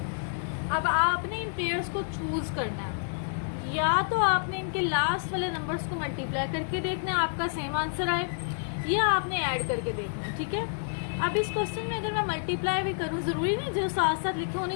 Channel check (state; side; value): silent; right; digital silence